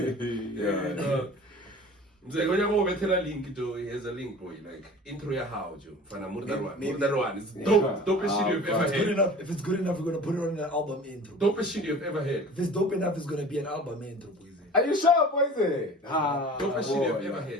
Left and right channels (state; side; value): normal; both; correlation 0.42